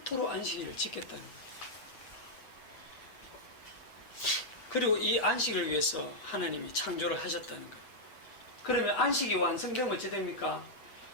안식일을 지켰다는 거예요. 그리고 이 안식일을 위해서 하나님이 창조를 하셨다는 거예요. 그러면 안식이 완성되면 어찌 됩니까?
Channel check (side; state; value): right; late; 7.8 ms